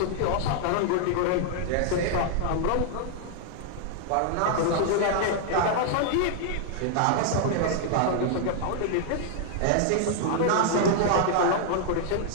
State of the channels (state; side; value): different; both; correlation 0.00